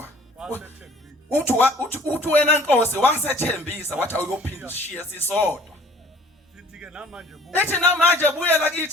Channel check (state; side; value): normal; both; correlation 0.52